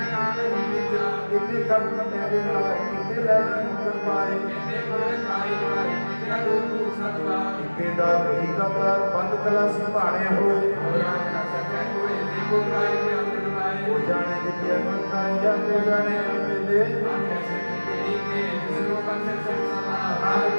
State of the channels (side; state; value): both; inverted; correlation -1.00